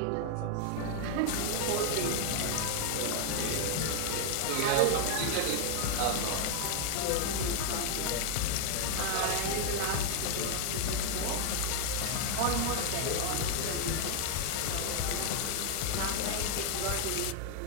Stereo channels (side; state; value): both; different; correlation 0.00